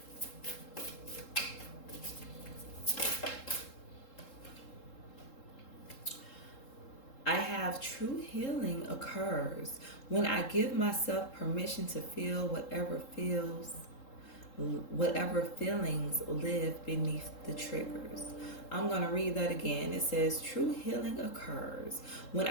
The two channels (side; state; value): right; late; 3.7 ms